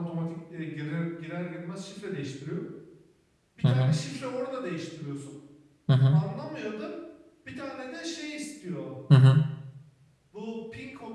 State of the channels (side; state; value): both; identical; correlation 1.00